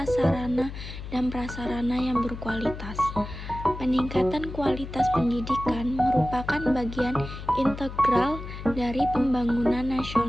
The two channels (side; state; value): left; noise; hum, 10 dB below the sound